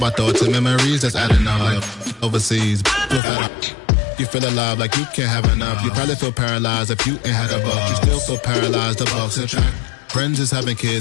thoughts and memories that's adding up. Like overseas, you feel alive like you can't have enough. You probably feel paralyzed if you ain't had a buck. You still feel paralyzed. The bucks and track. Friends is having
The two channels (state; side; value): drops out; right; at 3.2 s